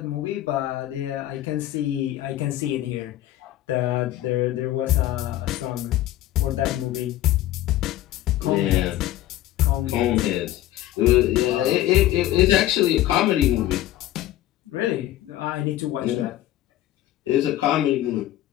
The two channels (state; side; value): quieter; right; 14.3 dB